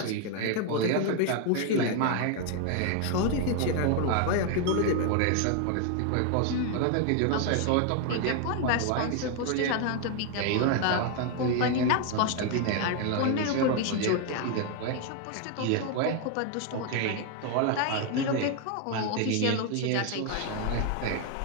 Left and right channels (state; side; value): different; both; correlation 0.00